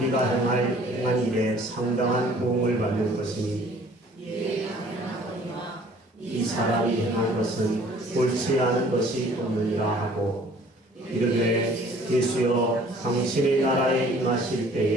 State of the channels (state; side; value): normal; both; correlation 0.54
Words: 행한 일에 상당한 보응을 받는 것이니 이 사람이 행한 것은 옳지 않은 것이 없느니라 하고 이르되 예수여 당신의 나라에 임하실